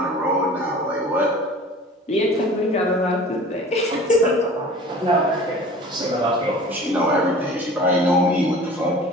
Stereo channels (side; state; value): both; normal; correlation 0.43